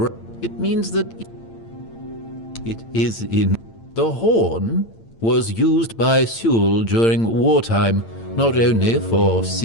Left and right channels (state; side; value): late; right; 8.8 ms